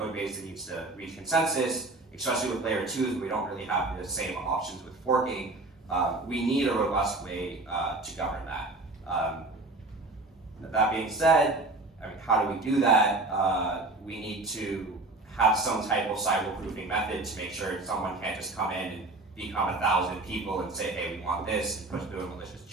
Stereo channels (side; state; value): left; quieter; 3.0 dB